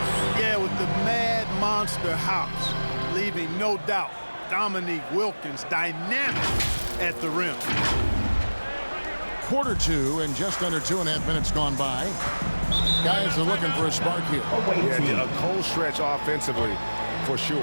Yeah, with the mad monster hops, leaving no doubt Dominique Wilkins dynamic at the rim. Quarter 2 and just under 2.5 minutes gone by. Guys are looking for a spark here. Yeah, a cold stretch offensively for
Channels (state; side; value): inverted; both; correlation -1.00